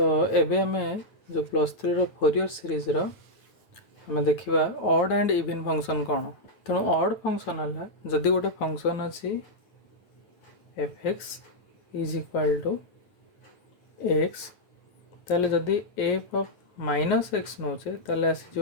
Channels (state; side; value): late; right; 9.1 ms